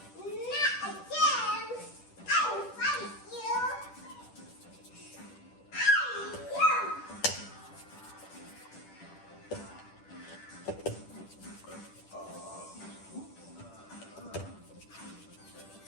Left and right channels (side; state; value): right; late; 10 ms